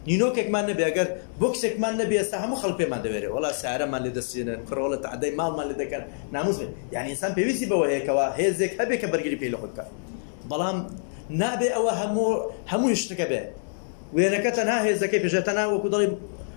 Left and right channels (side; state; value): right; silent; digital silence